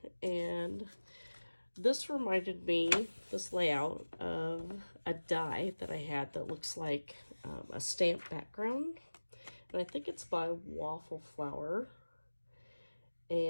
and this reminded me, this layout, of a die that I had that looks like a stamp background. And I think it's by Waffle Flower.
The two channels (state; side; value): inverted; both; correlation -1.00